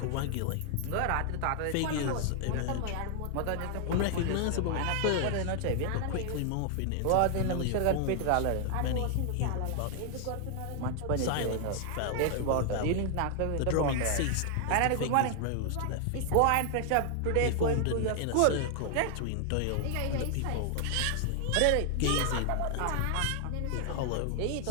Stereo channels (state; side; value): different; both; correlation 0.00